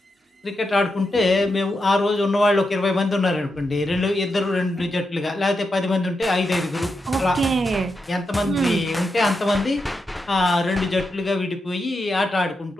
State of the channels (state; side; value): normal; both; correlation 0.86